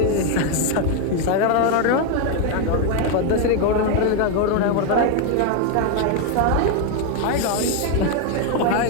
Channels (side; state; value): both; different; correlation 0.01